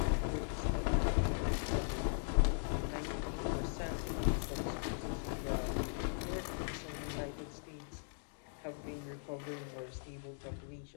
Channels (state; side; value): silent; right; digital silence